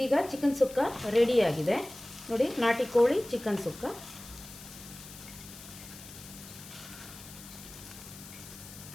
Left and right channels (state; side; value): noise; left; hiss, 16 dB below the sound